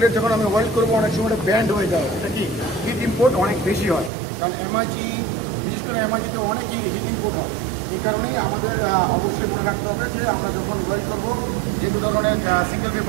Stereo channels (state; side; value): drops out; left; at 4.1 s